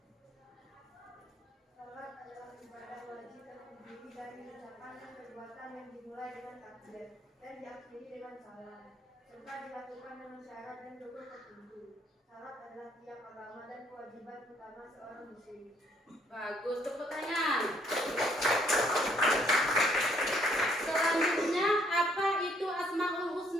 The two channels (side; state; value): both; normal; correlation 0.66